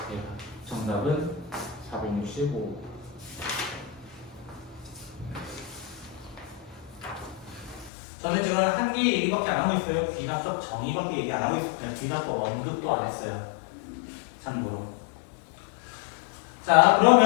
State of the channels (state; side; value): drops out; right; at 7.9 s